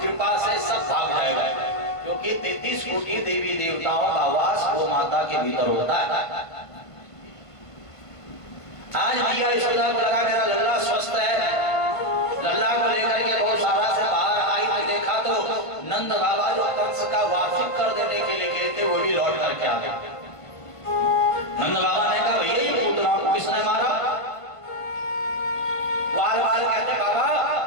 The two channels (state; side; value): late; right; 1.5 ms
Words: कृपा से सब भाग जाएगा, क्योंकि 33 कोटि देवी देवताओं का वास गौ माता के भीतर होता है। आज मैया यशोदा को लगा मेरा लल्ला स्वस्थ है, लल्ला को लेकर के गौशाला से बाहर आई तो देखा तो नंद बाबा जो कंस का वार्षिक कर देने के लिए गए थे वो भी लौट करके आ गए। नंद बाबा ने कहा भैया ये पूतना को किसने मारा? बाल बाल कहते बाबा